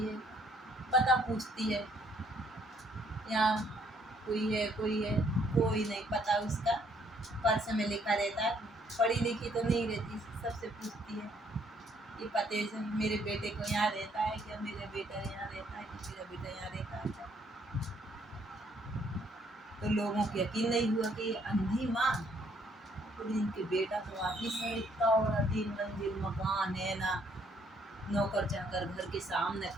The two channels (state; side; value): normal; both; correlation 0.67